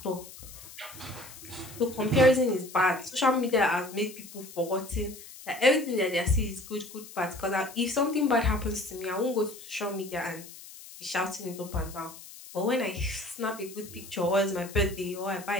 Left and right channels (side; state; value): left; noise; hiss, 16 dB below the sound